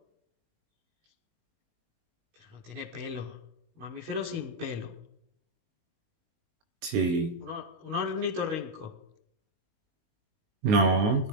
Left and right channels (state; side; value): late; left; 19 ms